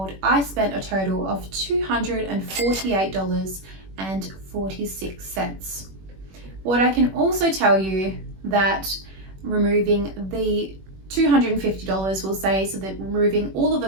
I spent a total of $248.46. What I can also tell you that removing the $250 will say, so that removing all of the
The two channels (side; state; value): left; late; 21 ms